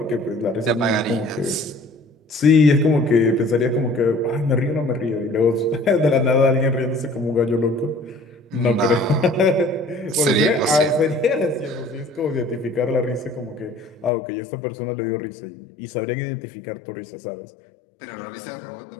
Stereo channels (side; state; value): right; drops out; at 14.1 s